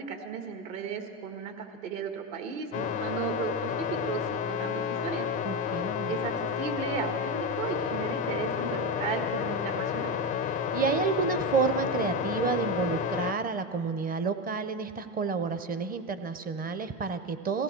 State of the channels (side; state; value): both; normal; correlation 0.15